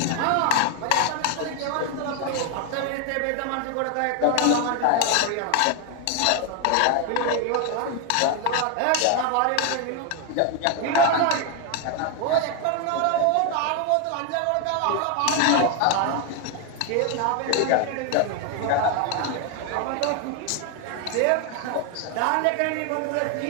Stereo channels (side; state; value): both; different; correlation 0.01